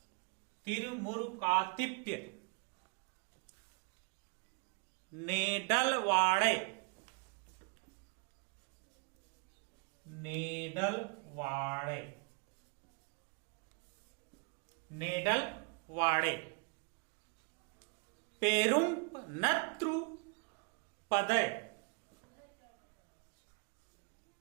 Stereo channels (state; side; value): quieter; left; 34.3 dB